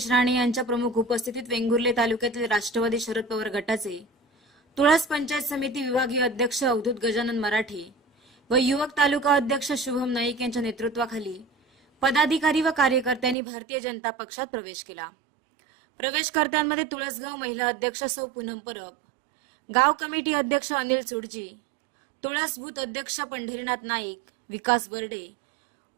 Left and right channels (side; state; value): left; drops out; at 13.4 s